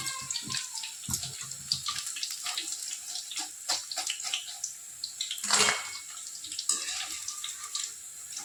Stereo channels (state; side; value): identical; both; correlation 1.00